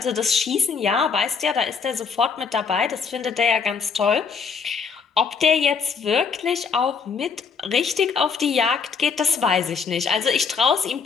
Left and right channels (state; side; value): quieter; right; 5.7 dB